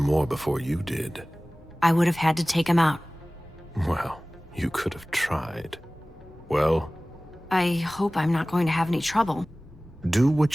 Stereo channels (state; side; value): normal; both; correlation 0.98